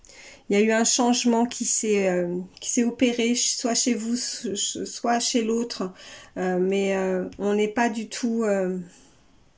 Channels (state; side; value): identical; both; correlation 1.00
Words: un changement qui s'est opéré, soit chez vous, soit chez l'autre, mais on n'est pas du tout...